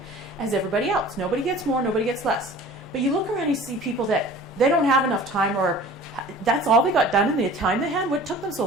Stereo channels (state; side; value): normal; both; correlation 0.44